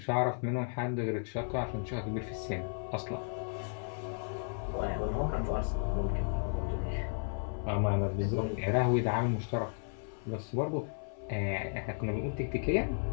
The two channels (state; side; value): silent; right; 55 dB below the other